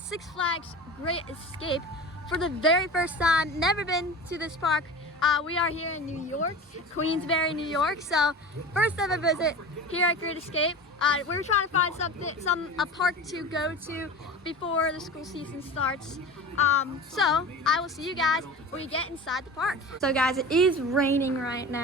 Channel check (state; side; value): normal; both; correlation 0.33